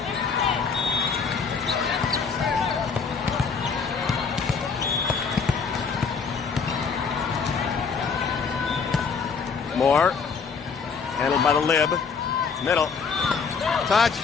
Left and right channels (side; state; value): right; quieter; 5.5 dB